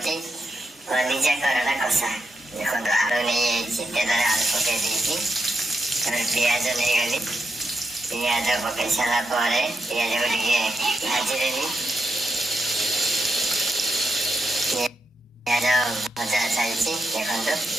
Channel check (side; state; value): both; normal; correlation 0.84